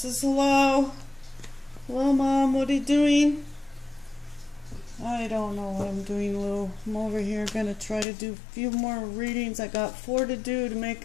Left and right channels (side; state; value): right; drops out; at 8.1 s